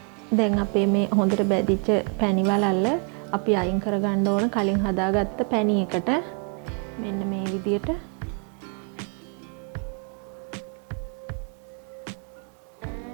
දැන් අපේ මේ හොඳට බැදිච්ච පැණි වලල්ල අපි අයින් කර ගන්න ඕන කලින් හදාගත්ත පැණි එකට. මෙන්න මේ විදියට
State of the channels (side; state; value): left; quieter; 39.1 dB